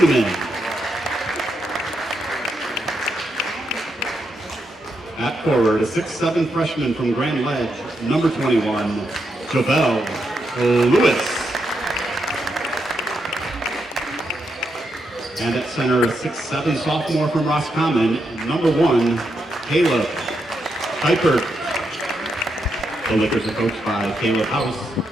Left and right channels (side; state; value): both; normal; correlation 0.82